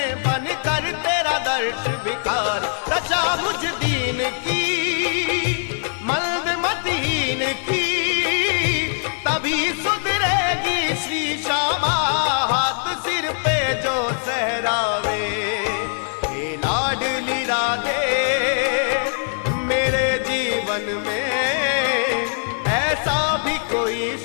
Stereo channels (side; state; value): right; silent; digital silence